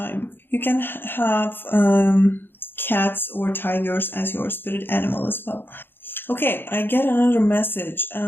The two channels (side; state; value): right; late; 0.10 ms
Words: You can have cats or tigers as your spirit animal as well. Okay, I get another message.